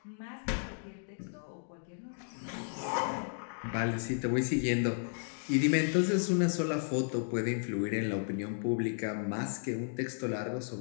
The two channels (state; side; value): silent; right; digital silence